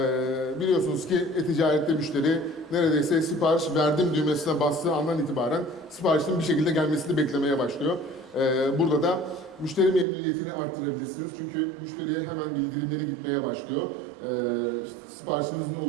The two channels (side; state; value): left; drops out; at 10.1 s